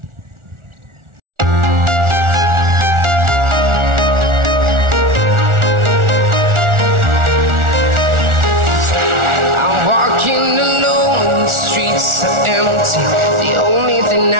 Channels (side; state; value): left; late; 1.4 ms